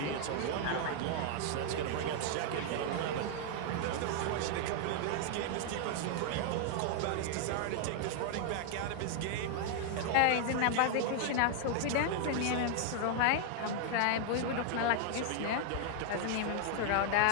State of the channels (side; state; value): both; different; correlation 0.00